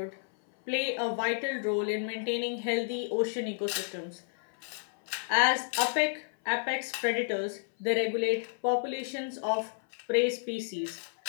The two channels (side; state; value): right; silent; 57 dB below the other